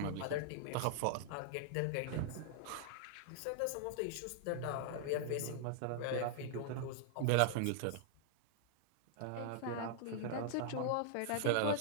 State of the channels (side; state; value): both; different; correlation -0.01